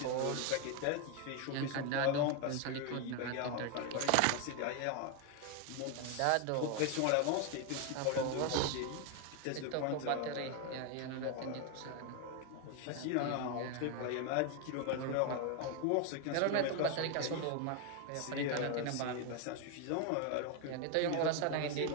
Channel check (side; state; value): both; different; correlation 0.01